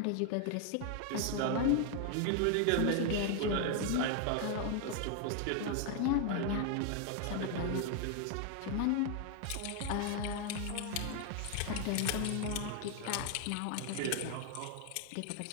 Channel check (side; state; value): both; different; correlation 0.00